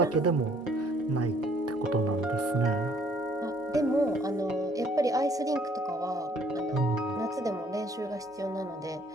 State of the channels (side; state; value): both; normal; correlation 0.61